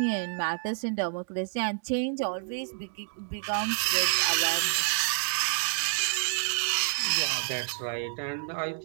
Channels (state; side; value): silent; left; digital silence